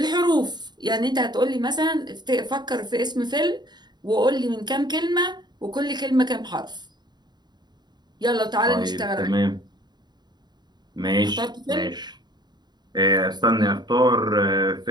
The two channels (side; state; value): left; late; 0.21 ms